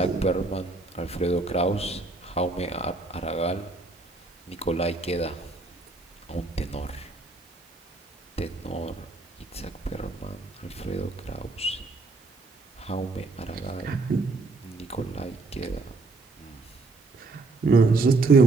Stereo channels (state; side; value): quieter; left; 3.5 dB